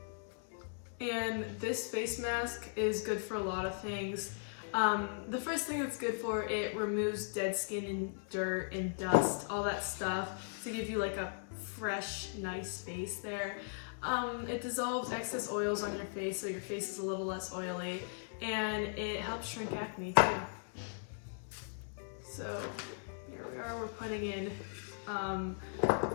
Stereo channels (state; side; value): silent; right; digital silence